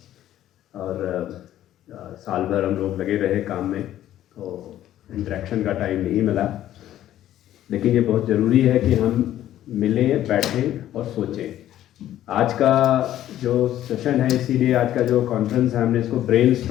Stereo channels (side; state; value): right; quieter; 12.6 dB